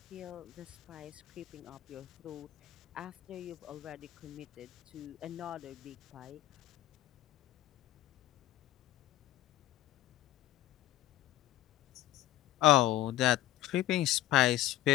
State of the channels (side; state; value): right; quieter; 14.7 dB